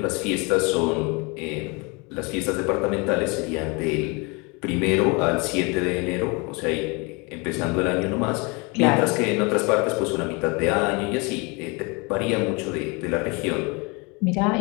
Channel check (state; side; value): quieter; right; 29.0 dB